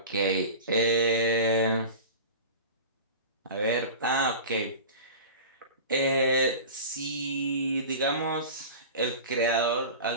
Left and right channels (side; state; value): both; inverted; correlation -0.34